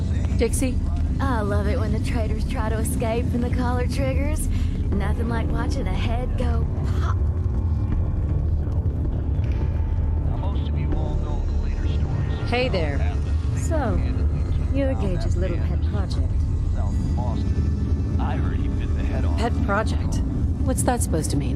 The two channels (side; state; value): both; identical; correlation 1.00